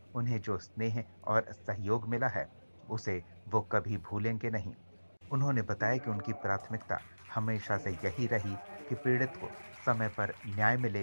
उन्हें जो स्नेह और सहयोग मिला है, उसे वो कभी भूलेंगे नहीं। उन्होंने बताया कि उनकी प्राथमिकता हमेशा से यही रही कि पीड़ित को समय पर न्याय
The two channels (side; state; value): both; inverted; correlation -1.00